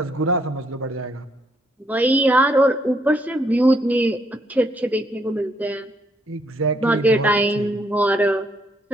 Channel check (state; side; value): normal; both; correlation 0.72